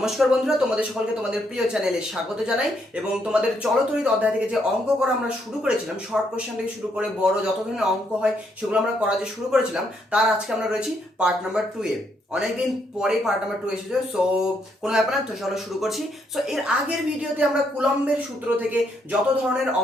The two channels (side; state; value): both; normal; correlation 0.74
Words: বন্ধুরা, তোমাদের সকলকে তোমাদের প্রিয় চ্যানেলে স্বাগত জানাই। এবং তোমাদের চলতরিত অধ্যায় থেকে যে অঙ্ক করা আমরা শুরু করেছিলাম, শর্ট কোশ্চেন থেকে শুরু করে বড় যত ধরনের অঙ্ক হয় সেগুলো আমরা করা যে শুরু করেছিলাম, তার আজকে আমরা রয়েছি পার্ট নাম্বার 2 এ। অনেকদিন পরে পার্ট নাম্বার 2 এসেছে, সো কোনো ব্যাপার না, তো চলো শুরু করছি। সো এর আগের ভিডিওতে আমরা কুলম্বের সূত্র থেকে যত ধরনের